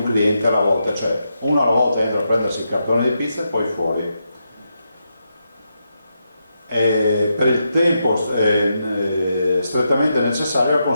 cliente alla volta, cioè uno alla volta entra a prendersi il cartone di pizza e poi fuori. Per il tempo strettamente necessario la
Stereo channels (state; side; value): inverted; both; correlation -0.84